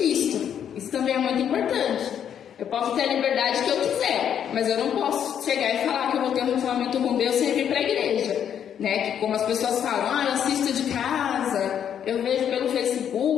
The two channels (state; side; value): quieter; right; 9.0 dB